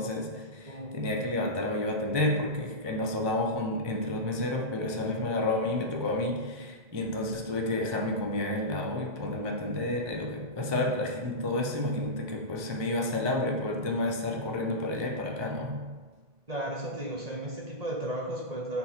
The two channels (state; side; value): late; left; 1.2 ms